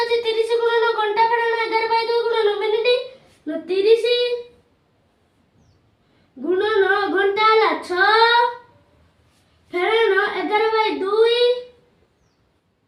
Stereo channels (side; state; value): both; identical; correlation 1.00